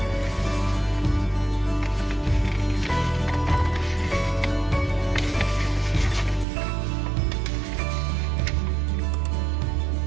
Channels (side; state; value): left; drops out; at 6.5 s